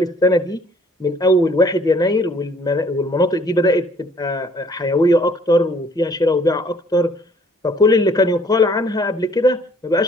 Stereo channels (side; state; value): both; normal; correlation 0.59